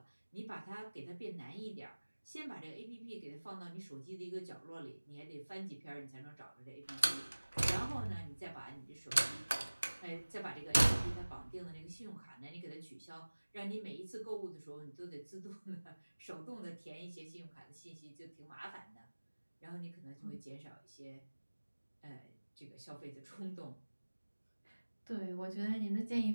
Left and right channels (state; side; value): inverted; both; correlation -1.00